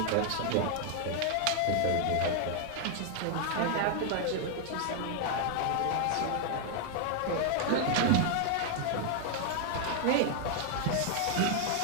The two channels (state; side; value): different; both; correlation 0.00